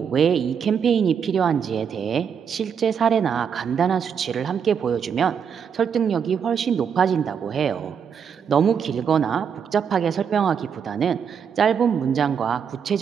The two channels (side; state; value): left; quieter; 7.2 dB